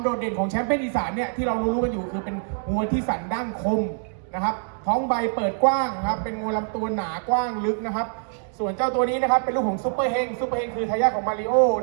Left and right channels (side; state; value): left; silent; digital silence